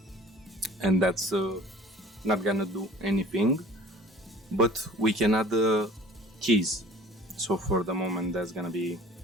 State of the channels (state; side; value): normal; both; correlation 0.47